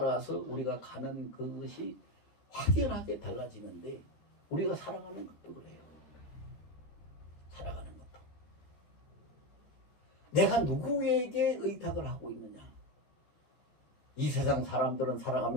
우리가 가는 그것이 확연하게 달라지는데, 우리가 살아가는 것도 그래요. 살아가는 것도. 내가 누구에게 의탁을 하고 있느냐. 이 세상 사람들은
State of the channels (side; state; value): right; late; 13 ms